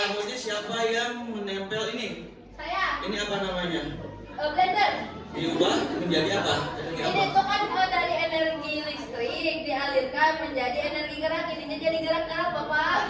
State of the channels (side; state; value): both; identical; correlation 1.00